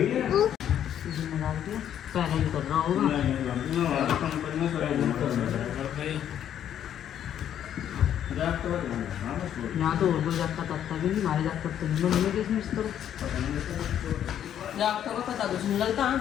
पहले ही कर रहा होगा। यहाँ तो और कोई जागता तकता भी नहीं, हमारे जागता तो नहीं मिलेगी इसमें इस तरह। जागता का पता कुछ नहीं लगता।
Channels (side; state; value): right; quieter; 10.1 dB